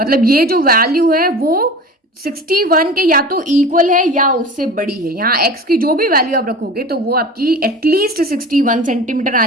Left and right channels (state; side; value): normal; both; correlation 0.36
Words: ये जो वैल्यू है वो 61 के या तो इक्वल है या उससे बड़ी है। यहाँ x की जो भी वैल्यू आप रखोगे तो वो आपकी एटलीस्ट 61 सेंटीमीटर